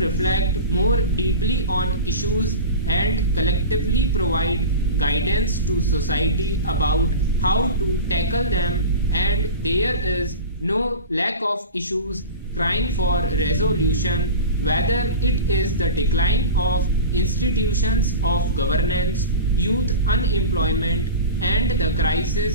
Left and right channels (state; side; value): inverted; both; correlation -0.31